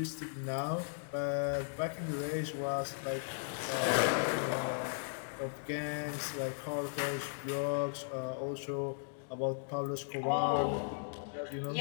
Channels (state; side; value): silent; right; digital silence